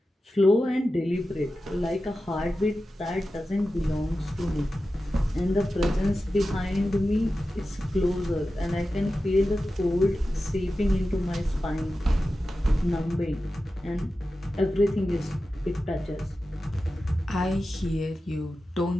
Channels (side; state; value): both; normal; correlation 0.93